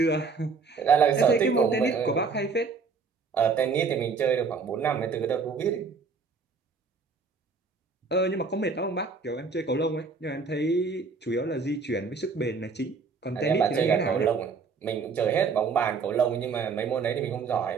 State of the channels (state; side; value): quieter; left; 4.9 dB